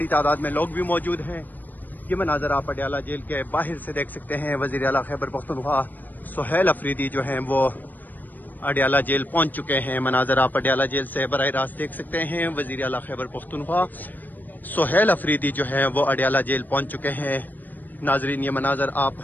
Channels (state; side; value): late; right; 0.087 ms